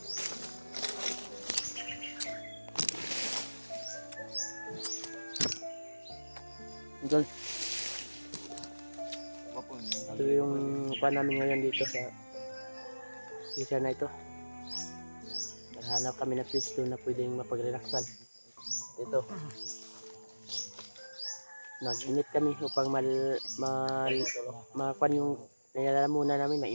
Idol, Wapon. ito yung kuan namin ngayon dito sa isa na ito. Naghanap kami na pwesto na pwedeng mapag-relaxan. Ito. Nag-init kami upang makuan yung nilalamunan namin,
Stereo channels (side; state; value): both; inverted; correlation -1.00